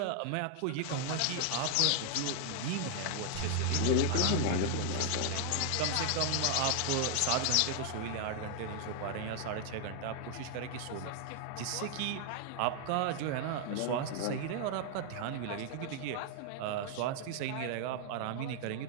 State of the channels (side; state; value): both; different; correlation 0.00